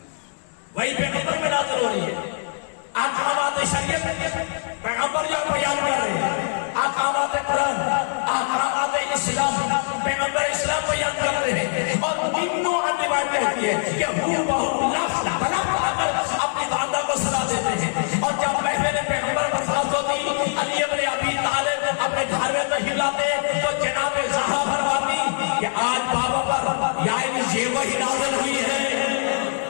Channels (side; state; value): right; silent; digital silence